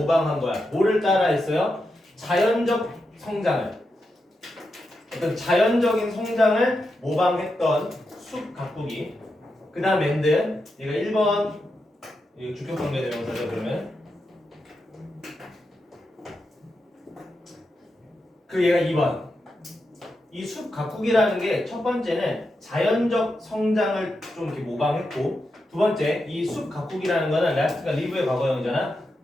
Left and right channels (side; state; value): both; normal; correlation 0.87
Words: 거야? 뭐를 따라했어요? 자연적 성장을. 어떤 자연적인 성장을 모방했던 숲 가꾸기. 그 다음 엔드. 얘가 1번 주격관계대명사죠. 그러면 그 얘가 2번. 이 숲 가꾸기라는 게 첫 번째는 자연적 성장을 좀 이렇게 모방했고, 두 번째 이 숲 가꾸기라는 거는 라스트가 리브의 과거형이잖아.